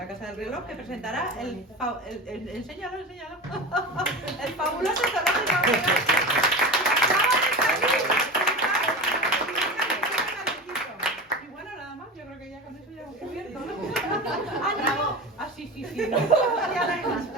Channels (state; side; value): normal; both; correlation 0.27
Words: Casa del Reloj, que presentará enséñalo, el fabuloso zoológico. Y bueno, nada más, yo creo que ya con eso ya hemos cubierto, ¿no? ¡Ah, no! Ah, sí, no. Ya no hay más.